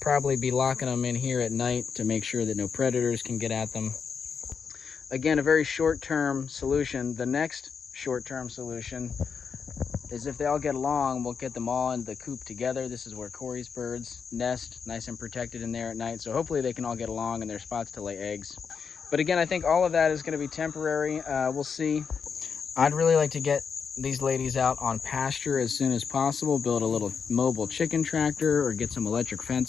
be locking them in here at night to make sure that no predators can get at them. Again, a very short-term solution. The next short-term solution is if they all get along, we'll get them all in the coop together. This is where Corey's birds nest, nice and protected in there at night. So hopefully they can all get along in their spots to lay eggs. But again, I think all of that is gonna be temporary. We'll see. I'd really like to get these ladies out on pasture as soon as possible, build a little mobile chicken tractor or get some electric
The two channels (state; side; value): quieter; right; 6.2 dB